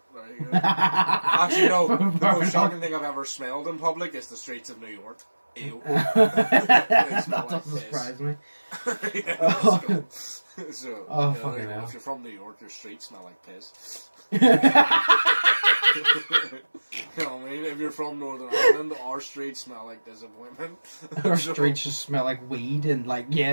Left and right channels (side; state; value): both; inverted; correlation -1.00